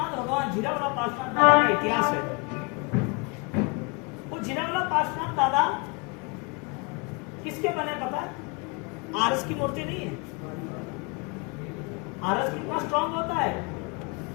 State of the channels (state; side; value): quieter; right; 30.0 dB